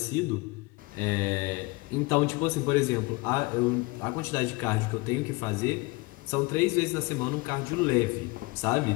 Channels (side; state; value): right; quieter; 24.4 dB